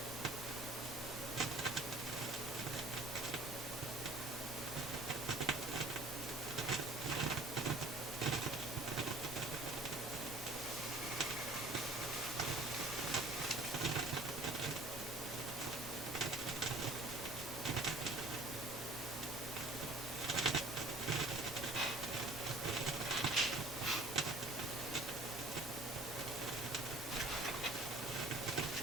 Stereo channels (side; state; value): both; normal; correlation 0.51